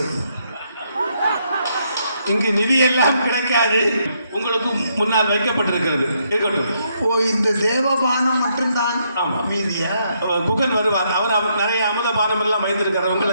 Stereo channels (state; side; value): inverted; both; correlation -0.75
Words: இங்கு நிதி எல்லாம் கிடைக்காது, உங்களுக்கு முன்னால் வைக்கப்பட்டிருக்கிறது. இருக்கட்டும். ஓ, இந்த தேவபானம் மட்டும்தான். ஆமாம். மீதியா குகன் வருவார், அவர் நிறைய அமுதபானம் எல்லாம் வைத்திருக்கிறார்.